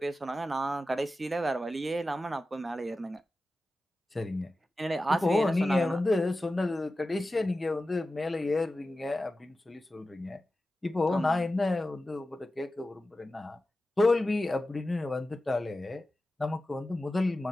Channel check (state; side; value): normal; both; correlation 0.94